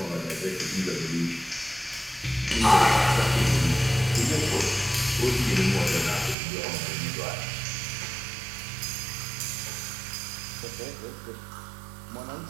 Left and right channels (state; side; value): drops out; left; at 6.4 s